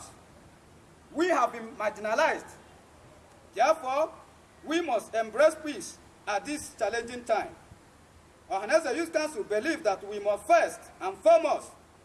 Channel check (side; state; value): both; identical; correlation 1.00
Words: We have been marginalized. Therefore, we must embrace peace at this challenging time. Ohanaeze Youth Council believes that we must first and foremost